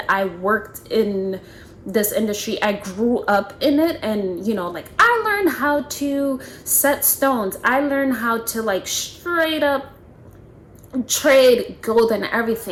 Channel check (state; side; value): identical; both; correlation 1.00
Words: I worked in this industry, I grew up in it, and you know, like I learned how to set stones. I learned how to like straight up trade gold and